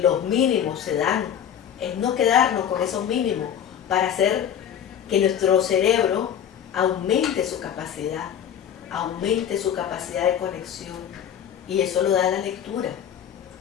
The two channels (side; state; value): right; quieter; 9.2 dB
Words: mínimos se dan, es no quedarnos con esos mínimos para hacer que nuestro cerebro aumente su capacidad de conexión, y eso lo da la lectura.